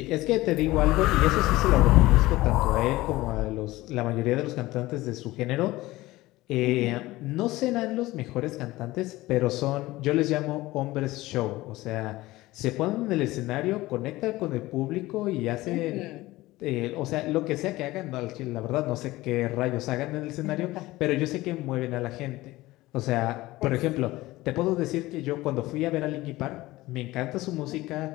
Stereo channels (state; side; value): quieter; right; 18.4 dB